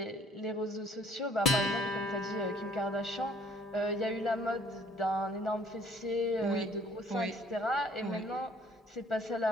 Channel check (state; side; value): normal; both; correlation 0.58